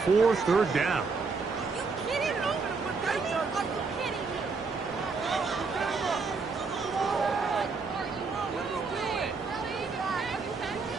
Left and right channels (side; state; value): left; quieter; 4.5 dB